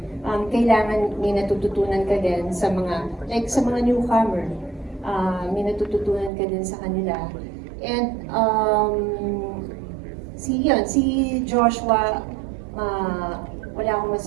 Kailangan may natututunan ka din sa mga newcomer. May natututunan ka din sa kanila. And si Joshua, wala akong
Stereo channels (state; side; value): drops out; left; at 6.3 s